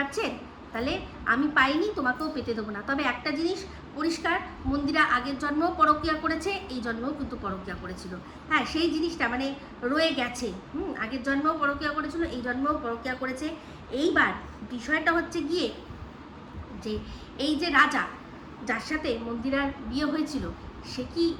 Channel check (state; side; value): identical; both; correlation 1.00